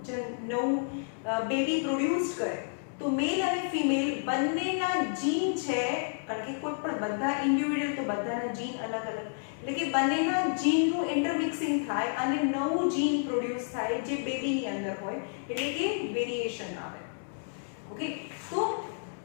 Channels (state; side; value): silent; right; digital silence